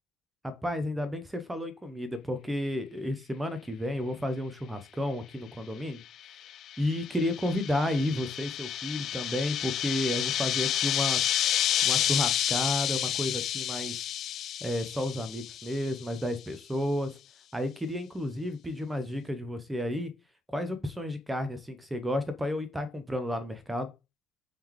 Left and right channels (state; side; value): quieter; right; 3.6 dB